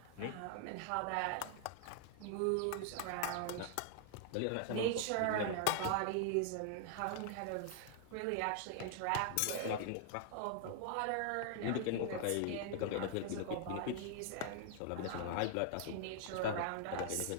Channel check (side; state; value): both; different; correlation 0.00